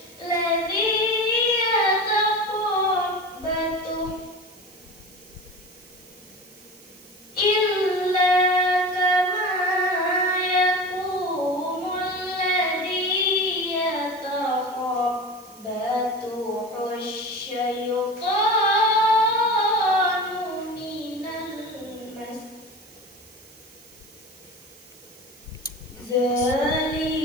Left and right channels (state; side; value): noise; right; hiss, 24 dB below the sound